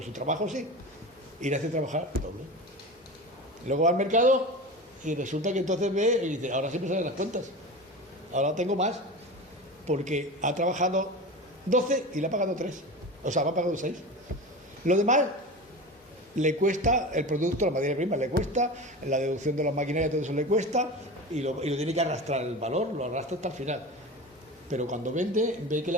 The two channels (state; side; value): normal; both; correlation 0.29